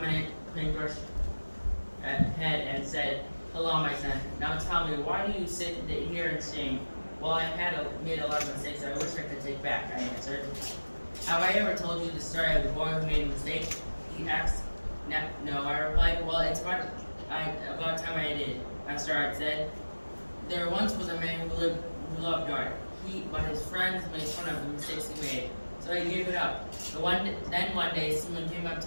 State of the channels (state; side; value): inverted; both; correlation -1.00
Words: paintbrush head and said, "Hello, my son. Now tell me, why do you sit here in shame?" "Well, I had made a lot of mistakes I wish I could take back," I answered. "Have I ever told you the story of the boy who made a mistake?" he asked. No, I replied. "Well, it's about time I did," Master Art said. "There once was a man who loved art. But his friends made fun of the mistakes he made, so he gave it up. Then one day, someone came up